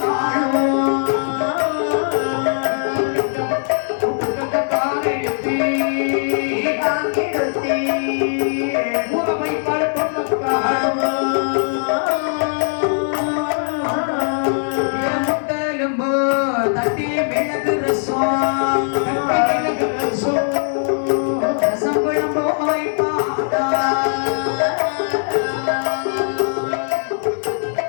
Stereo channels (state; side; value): silent; right; digital silence